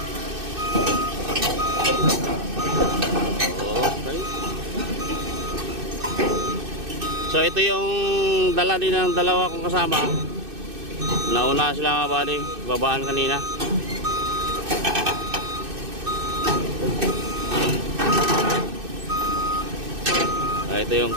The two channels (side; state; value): left; late; 2.6 ms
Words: Okay. So ito yung dala din ng dalawa kong kasama. Nauna sila mga buddy. Babaan kanina. Ito yung